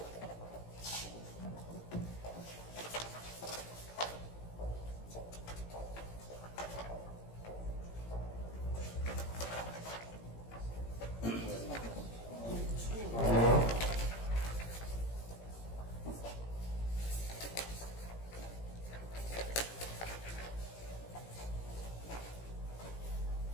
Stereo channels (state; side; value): late; right; 17 ms